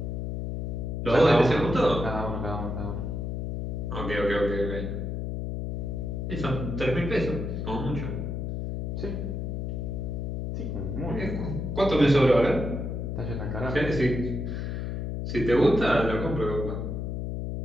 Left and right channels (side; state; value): left; noise; hum, 3 dB below the sound